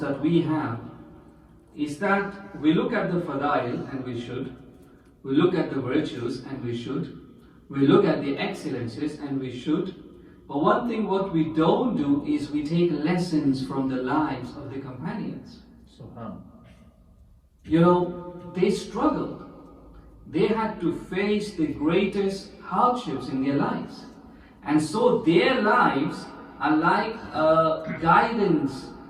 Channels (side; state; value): both; identical; correlation 1.00